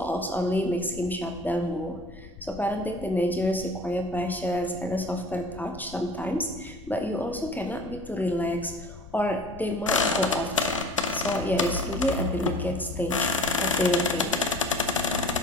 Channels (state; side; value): noise; left; rumble, 17 dB below the sound